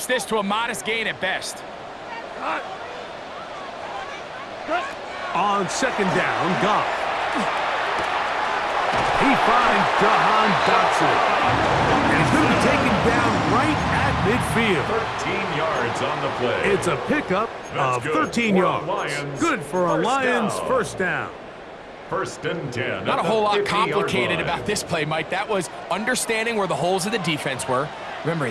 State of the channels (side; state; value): both; identical; correlation 1.00